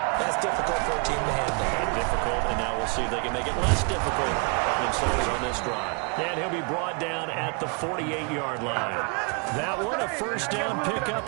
that's difficult for a team to handle. And difficult, and now we'll see if they can make it less difficult on themselves on this drive. And he'll be brought down at the 48-yard line. That one, a first down pickup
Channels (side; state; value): left; quieter; 35.1 dB